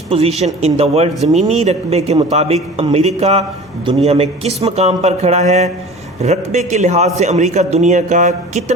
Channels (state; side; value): normal; both; correlation 0.40